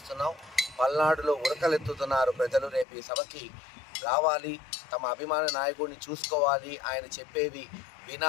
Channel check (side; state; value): right; drops out; at 2.9 s